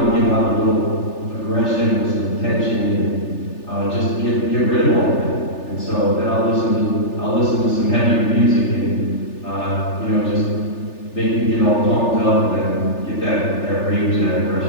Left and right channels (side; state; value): right; late; 3.4 ms